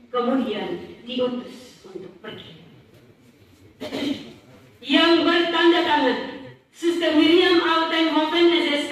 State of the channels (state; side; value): identical; both; correlation 1.00